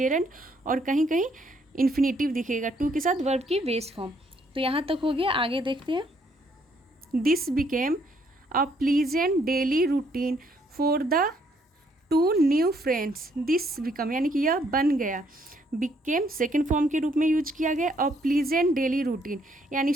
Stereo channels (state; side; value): normal; both; correlation 0.69